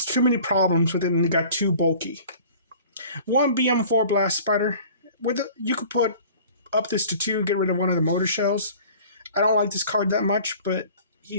problems with it and it got too bulky. 1 BM4 Blast Spider. You could put up this to 2, get rid of one of the Motor Shells. I don't like this card that much, but he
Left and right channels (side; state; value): both; inverted; correlation -0.46